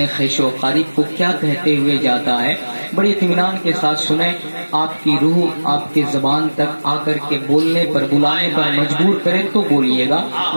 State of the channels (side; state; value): both; inverted; correlation -1.00